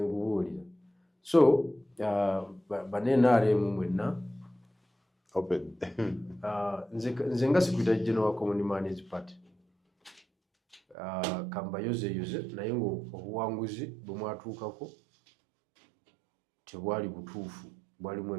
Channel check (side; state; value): left; drops out; at 11.0 s